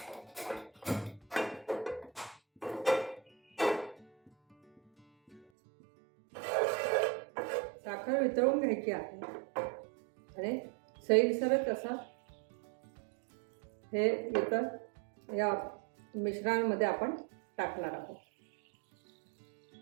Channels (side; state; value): left; drops out; at 5.4 s